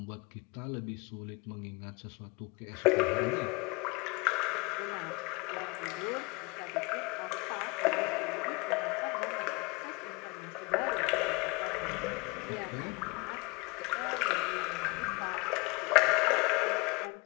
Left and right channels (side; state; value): right; quieter; 27.3 dB